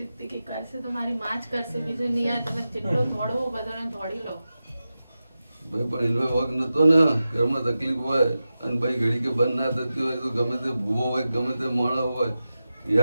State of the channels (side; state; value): both; inverted; correlation -0.93